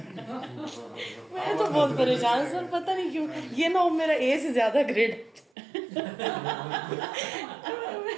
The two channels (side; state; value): left; drops out; at 5.5 s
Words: मैं तो बहुत परेशान हूँ सर, पता नहीं क्यों. ये ना हो मेरा ए से ज्यादा ग्रेड.